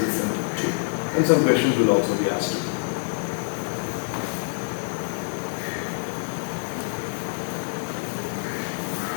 listened to. And some questions will also be asked.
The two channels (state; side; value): silent; right; 61 dB below the other